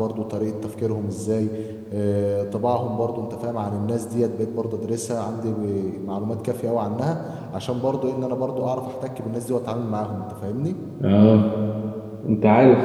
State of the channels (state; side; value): identical; both; correlation 1.00